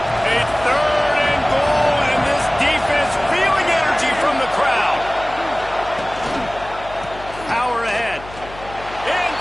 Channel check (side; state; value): left; noise; hum, 17 dB below the sound